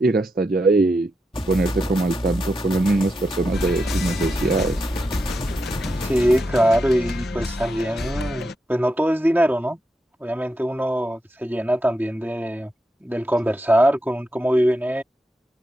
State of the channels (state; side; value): normal; both; correlation 0.85